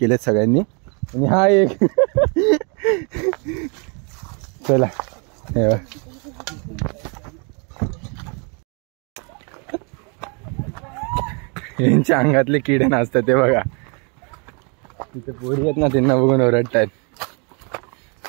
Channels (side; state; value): left; quieter; 35.3 dB